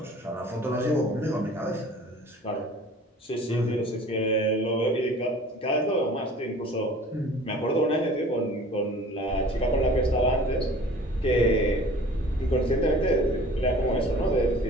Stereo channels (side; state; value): both; normal; correlation 0.46